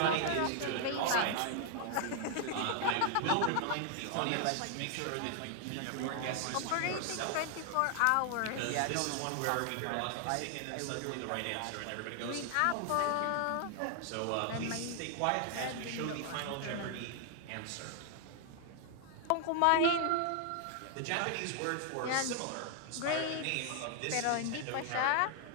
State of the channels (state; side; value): different; both; correlation 0.00